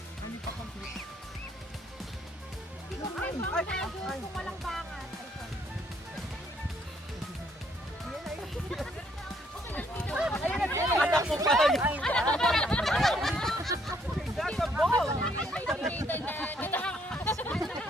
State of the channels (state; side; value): normal; both; correlation 0.68